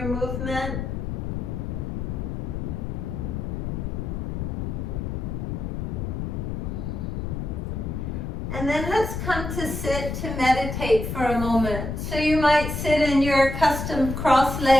movement. And then let's come to sit to meditate for a moment. So you might sit in your custom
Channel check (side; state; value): left; noise; rumble, 3 dB below the sound